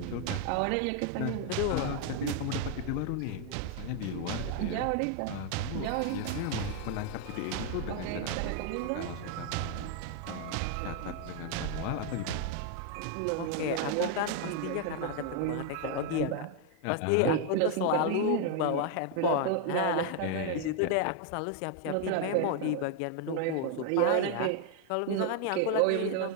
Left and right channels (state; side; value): different; both; correlation 0.00